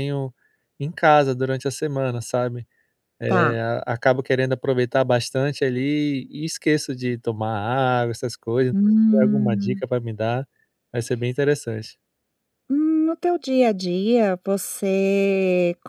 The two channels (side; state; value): both; identical; correlation 1.00